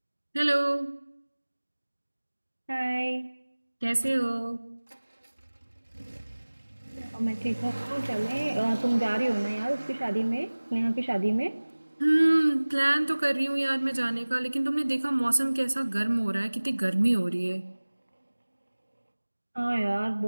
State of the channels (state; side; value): inverted; both; correlation -1.00